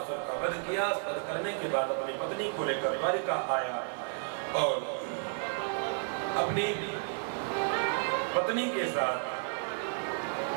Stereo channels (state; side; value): silent; left; 56 dB below the other